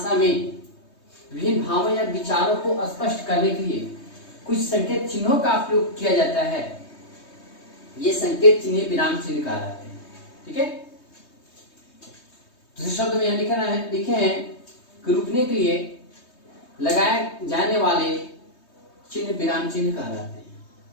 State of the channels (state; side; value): late; right; 3.2 ms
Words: में विभिन्न भावों या विचारों को स्पष्ट करने के लिए कुछ संकेत चिन्हों का प्रयोग किया जाता है। ये संकेत चिन्ह विराम चिन्ह कहलाते हैं। ठीक है, दूसरे शब्द में यह लिखे हैं कि रुकने के लिए लगाए जाने वाले चिन्ह विराम चिन्ह कहलाते